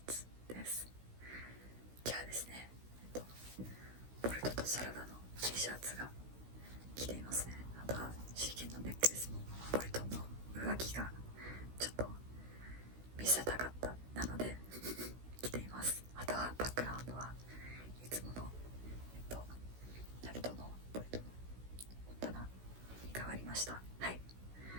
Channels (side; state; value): left; late; 16 ms